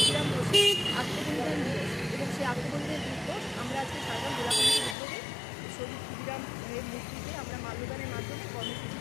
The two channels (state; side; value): drops out; right; at 5.0 s